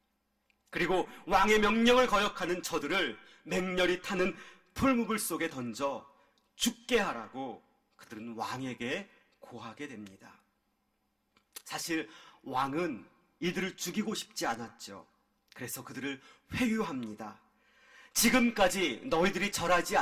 그리고 왕의 명령을 거역하는 저들을 맹렬히 타는 풀무불 속에 던져 죽게 하라고 그들은 왕에게 고하게 됩니다. 사실 왕은 이들을 죽이고 싶지 않았죠. 그래서 그들을 회유합니다. 지금까지 너희들이 절하지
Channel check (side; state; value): both; identical; correlation 1.00